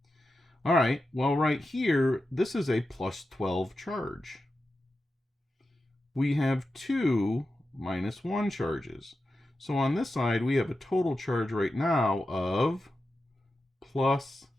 All right, well, right here, this is a plus 12 charge. We have 2 minus 1 charges. So on this side, we have a total charge right now of plus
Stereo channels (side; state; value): both; normal; correlation 0.91